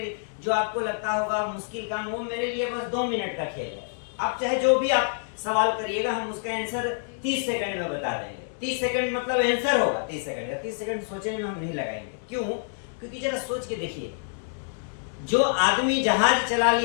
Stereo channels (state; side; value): silent; right; digital silence